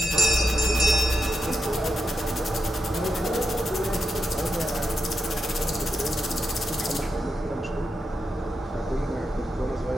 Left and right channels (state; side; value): normal; both; correlation 0.84